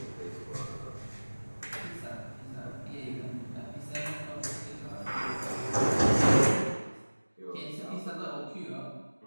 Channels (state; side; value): inverted; both; correlation -1.00